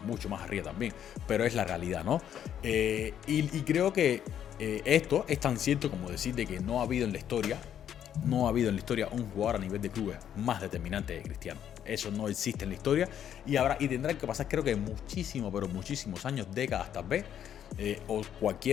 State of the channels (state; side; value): quieter; right; 9.8 dB